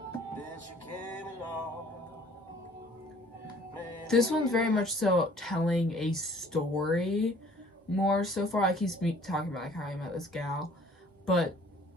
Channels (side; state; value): both; normal; correlation 0.54